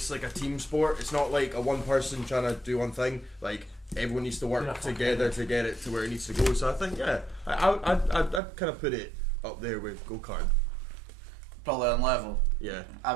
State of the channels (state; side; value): drops out; left; at 8.4 s